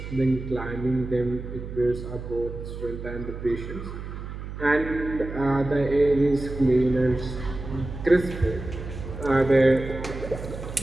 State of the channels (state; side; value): noise; right; hum, 9 dB below the sound